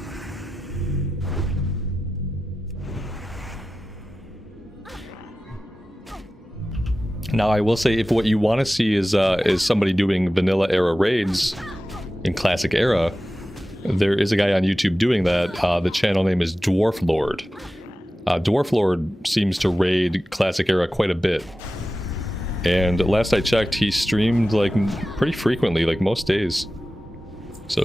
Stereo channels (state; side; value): normal; both; correlation 0.94